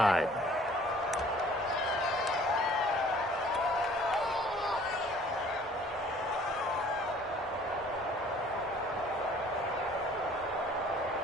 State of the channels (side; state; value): both; normal; correlation 0.54